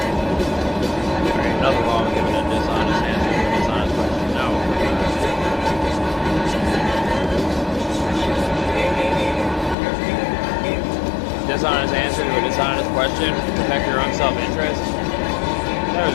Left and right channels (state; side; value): drops out; right; at 9.8 s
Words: There ain't nothing wrong with giving a dishonest answer to a dishonest question. No. Dishonest answer to a dishonest question, protect your own self-interest. There